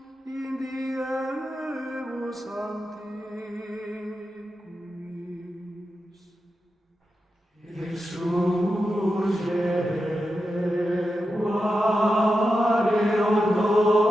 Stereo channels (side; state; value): both; normal; correlation 0.89